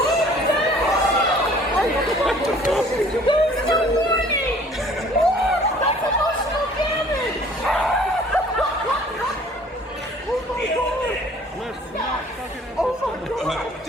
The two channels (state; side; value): normal; both; correlation 0.53